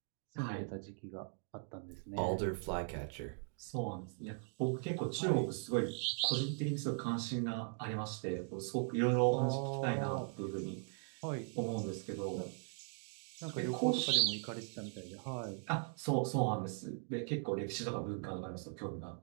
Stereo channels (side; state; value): left; silent; 51 dB below the other